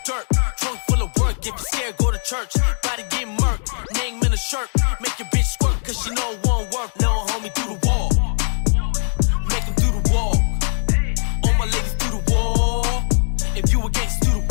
dirt. Trunk full of work. If you scared, go to church. Body get murked. Name in the shirt. Make your bitch squirt cause she know it won't work. Little homie do the walk. Make him do the walk. All my ladies do the walk. If you a gangsta, do the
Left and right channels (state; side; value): silent; right; digital silence